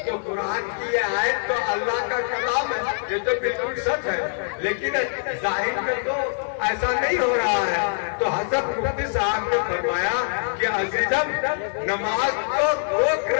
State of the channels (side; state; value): right; silent; digital silence